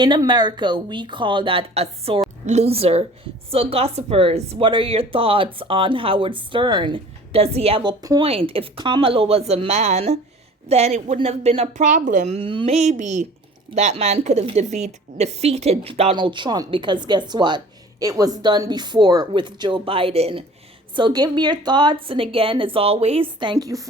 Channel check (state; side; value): normal; both; correlation 0.46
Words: America, we call that a sore loser." So, gossipers, what are your thoughts on Howard Stern? Does he have a point? If Kamala was a man, then it wouldn't have been a problem. Maybe that man could have defeated Donald Trump because guess what? It was done before with Joe Biden. So give me your thoughts. And again, as always, thank you